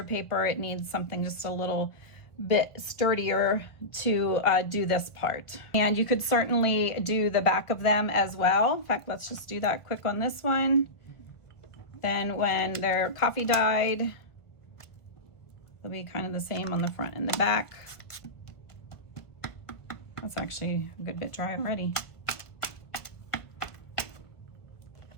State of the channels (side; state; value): right; late; 1.5 ms